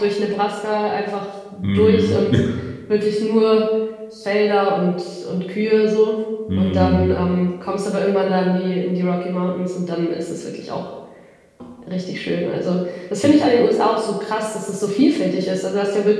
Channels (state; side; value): identical; both; correlation 1.00